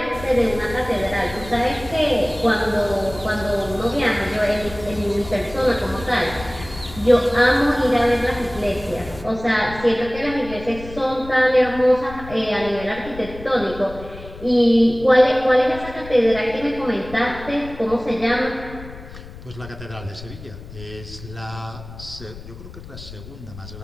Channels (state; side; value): noise; left; rumble, 15 dB below the sound